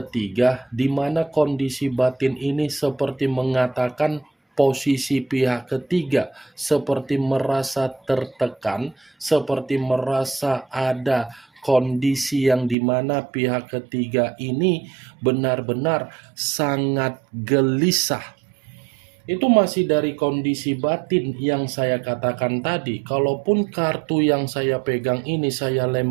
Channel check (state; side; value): drops out; left; at 12.8 s